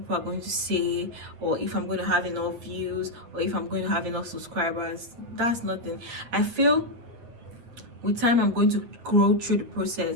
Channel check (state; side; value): late; left; 8.7 ms